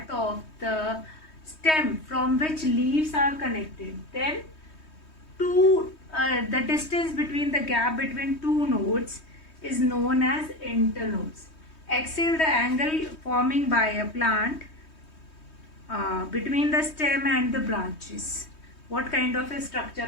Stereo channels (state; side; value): late; right; 3.2 ms